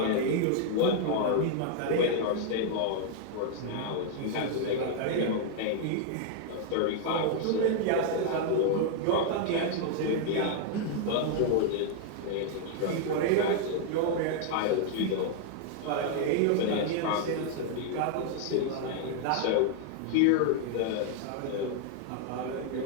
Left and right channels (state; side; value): different; both; correlation -0.01